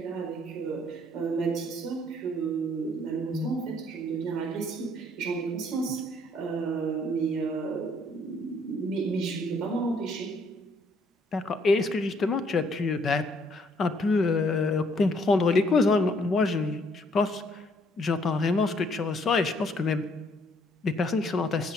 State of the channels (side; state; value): both; normal; correlation 0.65